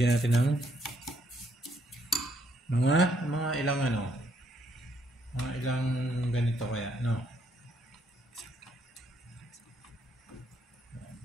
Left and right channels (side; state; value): both; normal; correlation 0.71